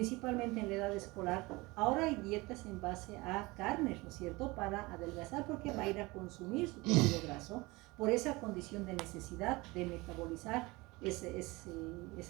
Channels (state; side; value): quieter; left; 23.1 dB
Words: en la edad escolar, ahora hay dietas en base a carnes, ¿no es cierto? Para adelgazar porque va a ir a consumir su tejido graso por esa condición de necesidad de metabolizar